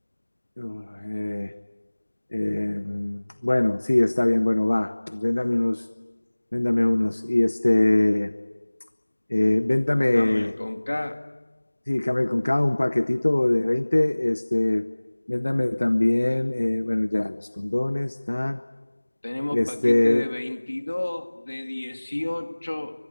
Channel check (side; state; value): both; inverted; correlation -1.00